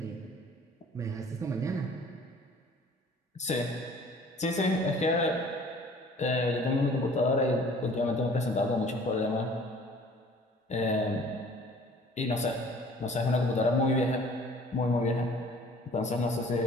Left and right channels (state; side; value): normal; both; correlation 0.51